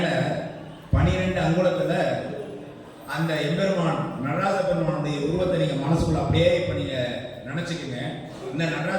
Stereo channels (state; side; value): identical; both; correlation 1.00